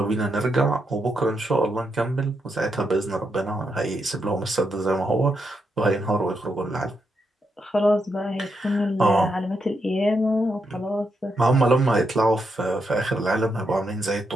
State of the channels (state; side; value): normal; both; correlation 0.82